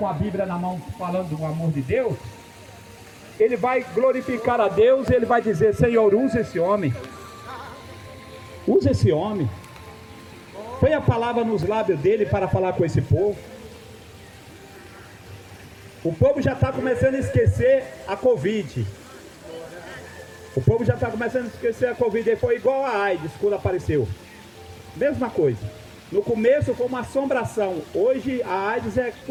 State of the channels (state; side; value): identical; both; correlation 1.00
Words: a Bíblia na mão falando do amor de Deus, ele vai glorificar a Deus e ele vai dizer: Senhor, usa esse homem. Usa esse homem. Põe a palavra nos lábios dele para falar com esse povo. O povo já está começando a esquecer a Covid. O povo já está começando a esquecer a Covid. Foi igual a AIDS quando apareceu. Mesma coisa. No começo foi uma assombração. Hoje a AIDS é